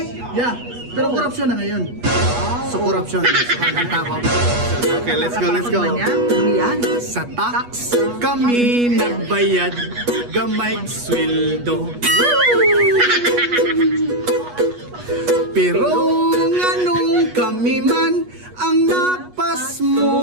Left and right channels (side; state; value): left; late; 8.3 ms